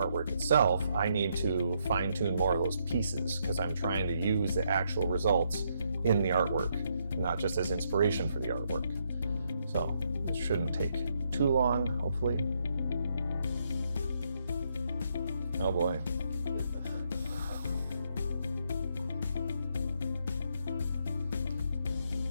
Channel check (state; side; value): inverted; both; correlation -0.76